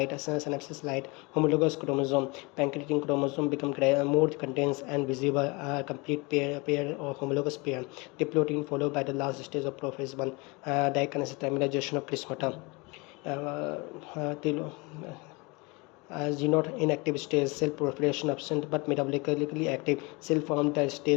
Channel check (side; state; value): right; quieter; 27.2 dB